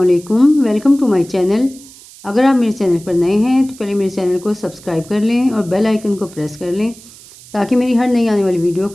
Welcome to my channel. अगर आप मेरे चैनल पर नए हैं तो पहले मेरे चैनल को सब्सक्राइब कर लें और बेल आइकन को प्रेस कर लें ताकि मेरी हर नई आने वाली वीडियो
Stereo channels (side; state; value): right; noise; hiss, 21 dB below the sound